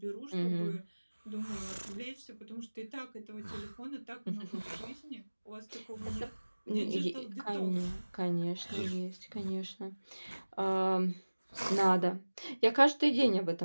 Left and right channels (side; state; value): both; inverted; correlation -1.00